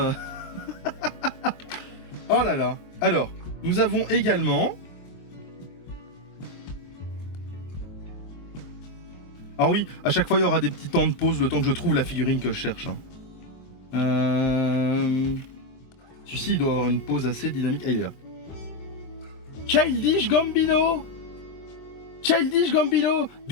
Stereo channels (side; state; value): right; late; 23 ms